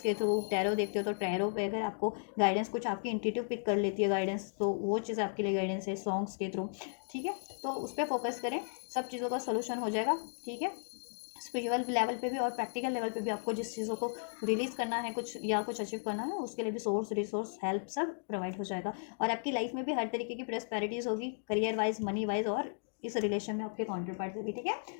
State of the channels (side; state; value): right; silent; digital silence